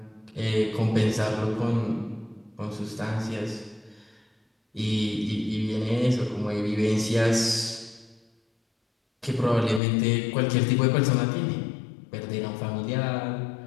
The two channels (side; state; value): right; drops out; at 9.8 s